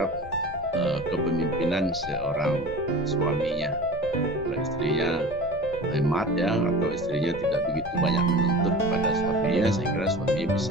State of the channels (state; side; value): normal; both; correlation 0.36